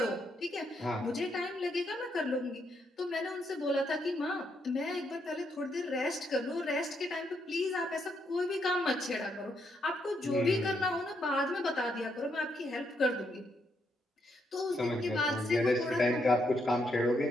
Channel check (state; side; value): normal; both; correlation 0.77